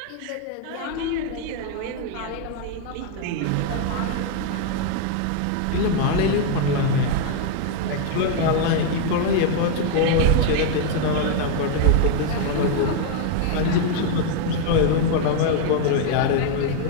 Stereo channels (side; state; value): both; different; correlation 0.00